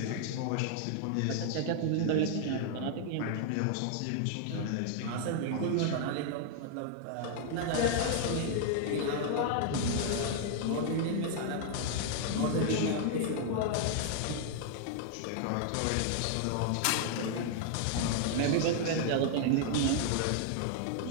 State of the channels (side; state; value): both; different; correlation 0.00